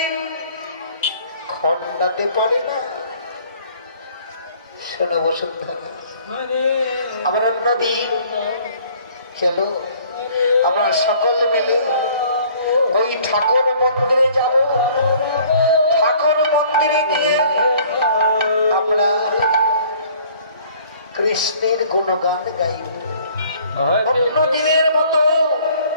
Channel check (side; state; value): both; inverted; correlation -0.55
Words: খণ্ডাতে পারে না। শোনো বসুন্ধরা, আবার অন্যদিন চলো আমরা সকল মিলে ওই ঠাকুর মন্দিরে যাব। ঠাকুর মন্দিরে গিয়ে আমরা কৃষ্ণের গুণগান গাইব। অন্য দিনের মতো